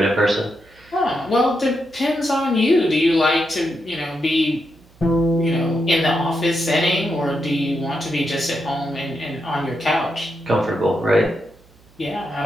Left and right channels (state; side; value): noise; right; hum, 28 dB below the sound